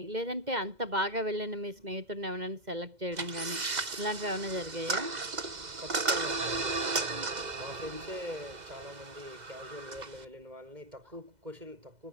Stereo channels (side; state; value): left; late; 2.0 ms